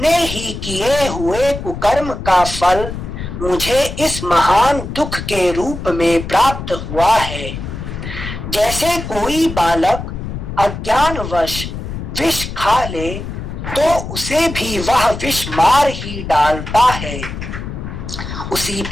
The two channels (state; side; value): noise; left; rumble, 8 dB below the sound